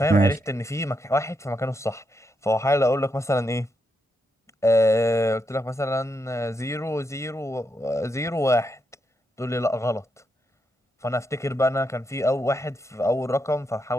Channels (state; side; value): normal; both; correlation 0.82